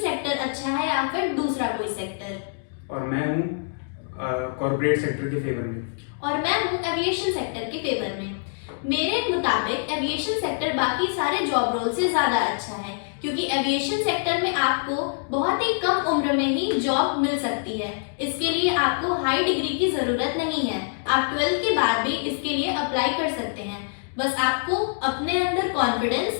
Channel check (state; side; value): silent; right; digital silence